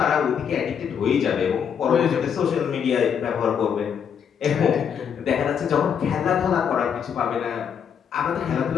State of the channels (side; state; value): right; quieter; 7.6 dB